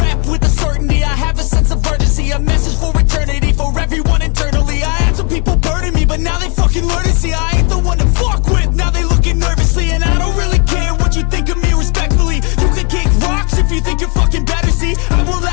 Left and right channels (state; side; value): quieter; right; 35.1 dB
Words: with a certainty, I have a sense of urgency, a message for eternity, for everyone internally. I had some people burning me, but now they fucking learn to see I ain't the one to fuck with. Now they looking nervously, and I don't really care what you think of me, respectfully. You can kick rocks if you think you're fucking better, see I will